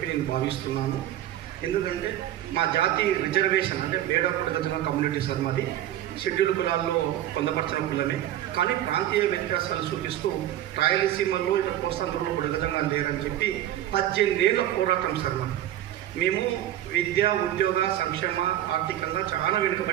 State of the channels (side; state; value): left; quieter; 12.7 dB